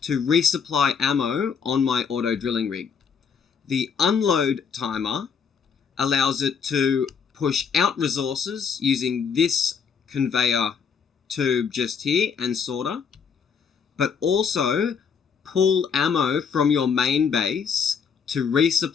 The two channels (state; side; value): quieter; right; 6.4 dB